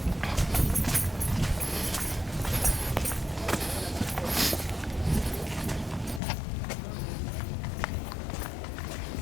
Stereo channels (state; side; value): drops out; right; at 6.2 s